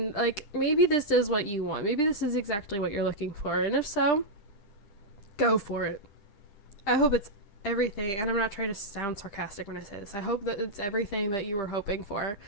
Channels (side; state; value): right; late; 10 ms